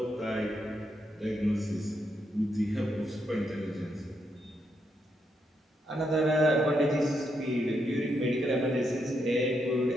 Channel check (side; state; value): both; normal; correlation 0.80